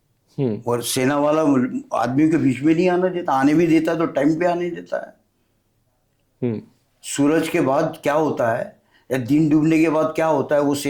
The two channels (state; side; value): identical; both; correlation 1.00